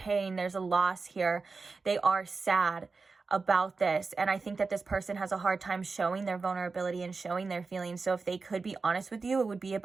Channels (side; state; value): left; quieter; 4.3 dB